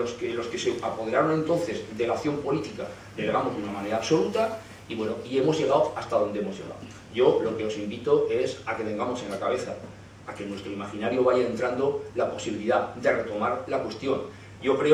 se apoderaron entonces de la acción política, delegamos de una manera absoluta y bueno, y hemos llegado hasta donde hemos llegado. Yo lo que os invito es a que tengamos en la cabeza, a que en nuestro imaginario vaya entrando la posibilidad de retomar la cuestión. Yo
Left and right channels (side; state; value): both; identical; correlation 1.00